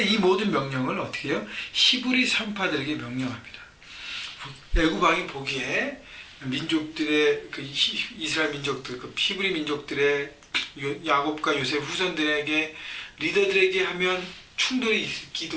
이 모든 명령을 어떻게 해요? 히브리 산파들에게 명령합니다. 애굽 왕이 보기에 민족들의 그 이스라엘 민족들, 그 히브리 민족들의 야곱과 요셉 후손들에게 리더들에게 하면 충돌이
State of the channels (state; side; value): identical; both; correlation 1.00